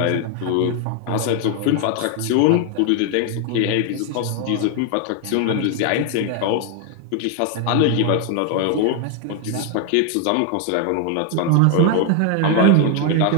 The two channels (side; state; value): both; different; correlation 0.00